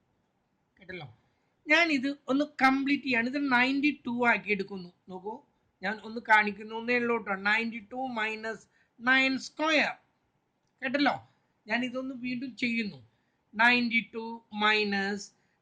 കേട്ടല്ലോ, ഞാനിത് ഒന്ന് കംപ്ലീറ്റ് ചെയ്യാണ്. ഇത് 92 ആക്കി എടുക്കുന്നു. നോക്കൂ, ഞാൻ ഒന്ന് കാണിക്കുന്നു എന്നേ ഉള്ളൂ കേട്ടോ. 92 മൈനസ് 9 സ്ക്വയർ. കേട്ടല്ലോ, ഞാൻ ഇതൊന്ന് വീണ്ടും ചെയ്യുന്നു. 92 മൈനസ്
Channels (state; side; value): identical; both; correlation 1.00